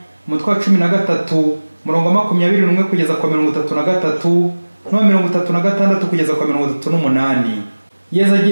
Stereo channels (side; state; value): both; inverted; correlation -1.00